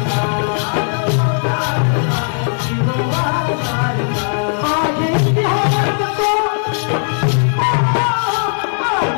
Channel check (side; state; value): right; silent; 68 dB below the other